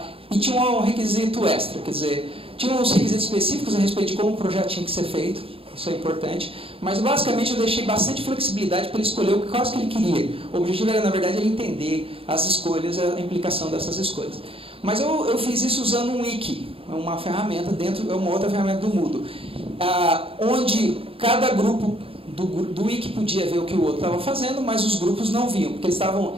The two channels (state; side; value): late; left; 0.27 ms